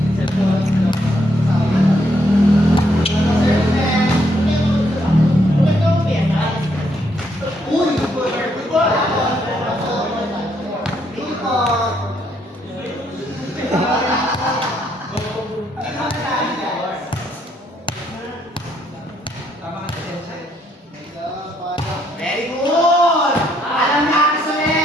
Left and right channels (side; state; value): both; normal; correlation 0.73